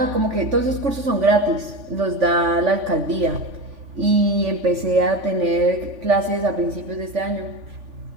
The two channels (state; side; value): late; left; 3.5 ms